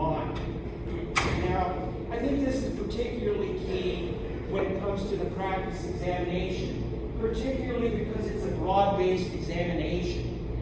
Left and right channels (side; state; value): both; identical; correlation 1.00